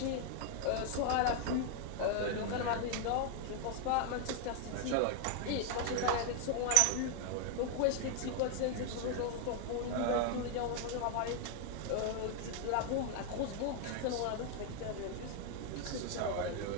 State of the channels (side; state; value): both; different; correlation 0.00